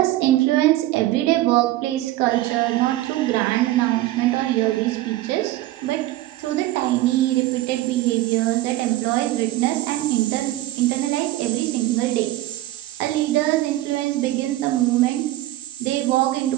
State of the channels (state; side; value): quieter; left; 16.0 dB